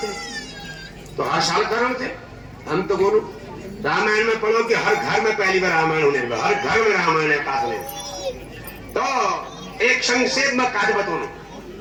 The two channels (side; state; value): both; identical; correlation 1.00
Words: तो हर साल करण थे हम तो बोलो रामायण में पढ़ो कि हर घर में पहली बार रामायण होने लगा हर घर में रामायण है काट तो एक संक्षेप में काट बताओ